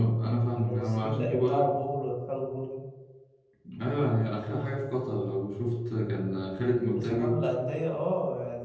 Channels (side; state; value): both; identical; correlation 1.00